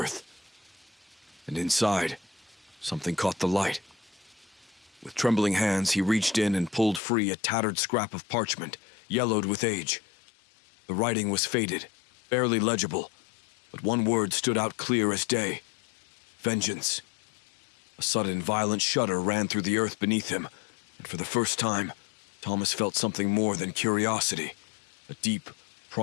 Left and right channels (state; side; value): drops out; right; at 7.0 s